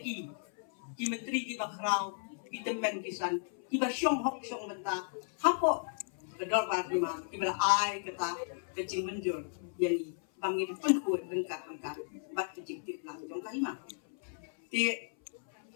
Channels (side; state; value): right; silent; 55 dB below the other